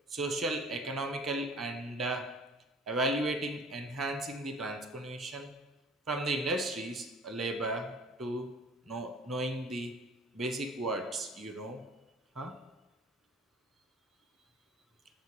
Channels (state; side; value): normal; both; correlation 0.48